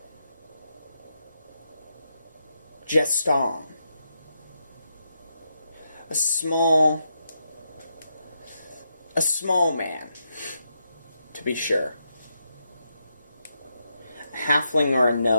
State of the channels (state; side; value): inverted; both; correlation -0.82